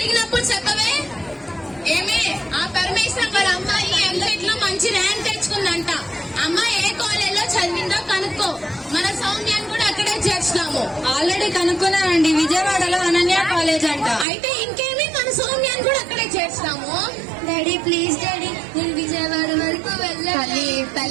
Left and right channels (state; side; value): drops out; left; at 14.2 s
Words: చెప్పవే. ఏమి ఆ పరమేశ్వరం వాళ్ళ అమ్మాయి MCET లో మంచి ర్యాంక్ తెచ్చుకుందంట. అమ్మాయి ఏ కాలేజ్ లో చదివిందో కనుక్కో. మన సౌమ్యాన్ని కూడా అక్కడే చేర్చుదాము. ఆల్రెడీ కనుక్కున్నానండి, విజయవాడలో అనన్య కాలేజ్ అంట. అయితే ఇంకేమి, మన సౌమ్యాన్ని కూడా అక్కడే చేర్చుదాము. డాడీ ప్లీజ్ డాడీ, నేను విజయవాడ వరకు తల్లి